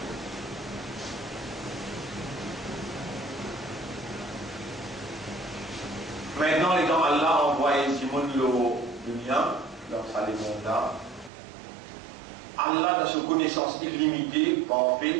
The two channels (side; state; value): left; drops out; at 11.3 s